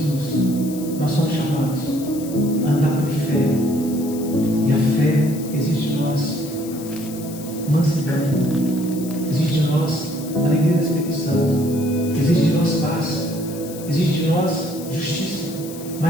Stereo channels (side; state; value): left; noise; hiss, 15 dB below the sound